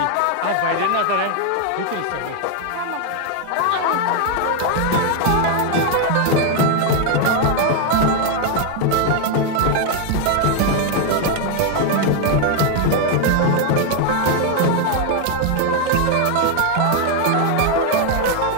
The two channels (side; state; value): both; different; correlation 0.01